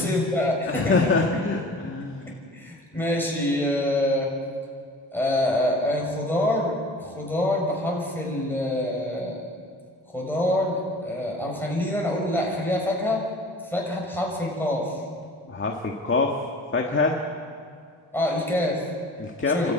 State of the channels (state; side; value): normal; both; correlation 0.43